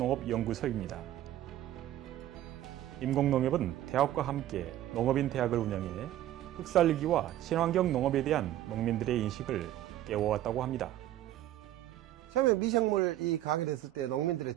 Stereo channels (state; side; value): quieter; left; 13.2 dB